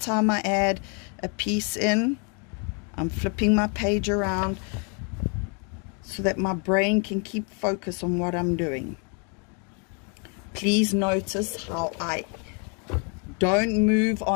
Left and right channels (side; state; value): right; quieter; 37.0 dB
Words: I add a piece in. I'm flipping my page around so that my brain can keep focus on what I'm doing. Please notice how I don't move